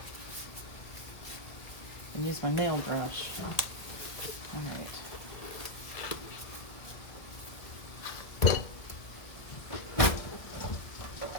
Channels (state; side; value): late; right; 1.6 ms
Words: and use my nail brush. All right.